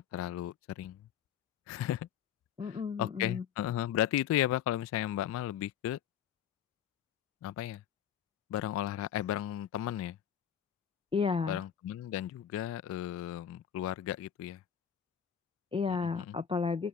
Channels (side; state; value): right; quieter; 9.0 dB